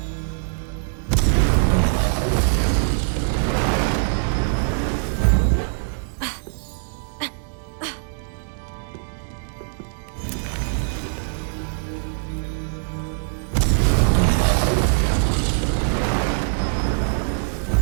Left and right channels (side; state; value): left; silent; 63 dB below the other